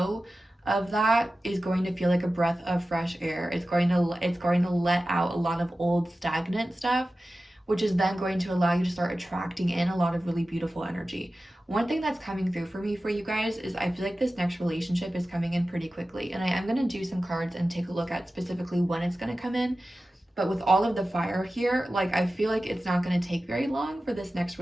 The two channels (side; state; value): both; normal; correlation 0.95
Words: of that is going to feel like a breath of fresh air. It's going to let out a lot of old stagnant stuff, which is then going to allow you to start attracting in a lot of really beautiful energy. One thing that's coming through for me for you guys is I feel like this next relationship is coming in pretty quickly. And I am going to do some cards and take a look at specifically when it's going to come in. But with all of the fire here, like, I feel like it's not going to take very long for this next